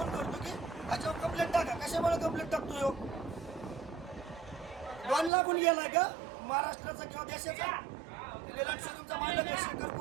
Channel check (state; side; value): drops out; left; at 5.3 s